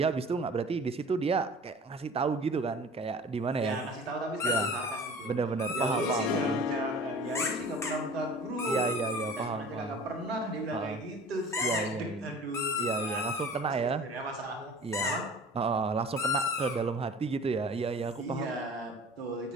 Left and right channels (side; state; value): both; normal; correlation 0.43